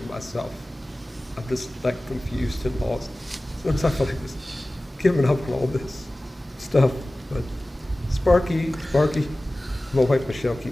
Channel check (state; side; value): normal; both; correlation 0.97